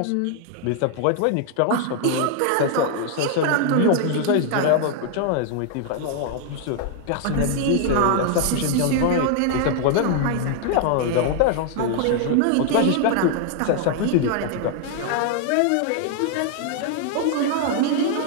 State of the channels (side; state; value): both; different; correlation 0.00